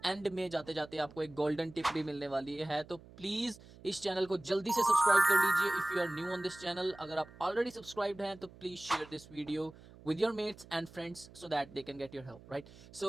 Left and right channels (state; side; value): noise; right; hum, 21 dB below the sound